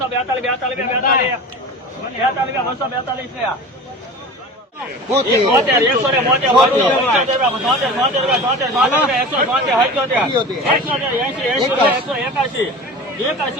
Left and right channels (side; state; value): both; normal; correlation 0.35